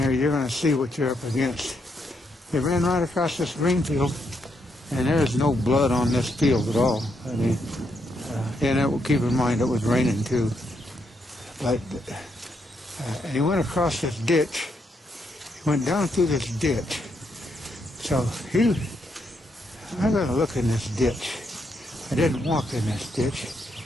here, you're going to see what you're up against. They ran right across this green field, and there's no blood on this field at all. I mean, and keep in mind it was raining too. But and he went across this ditch. He went down through this ditch. So I got to look in this ditch. I didn't walk in this ditch,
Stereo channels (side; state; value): both; normal; correlation 0.78